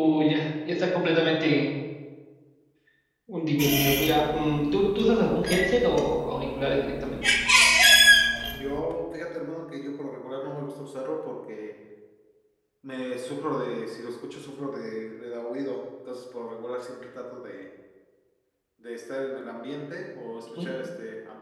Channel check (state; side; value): identical; both; correlation 1.00